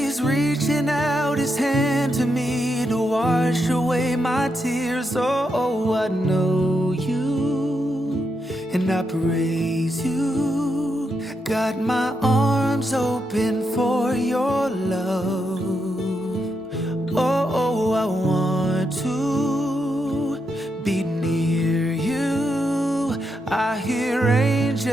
reaching out his hand to me to wash away my tears. Oh, I know you and I praise you. Got my arms open for your love. Oh, I want to be near you. I hear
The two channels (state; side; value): normal; both; correlation 0.83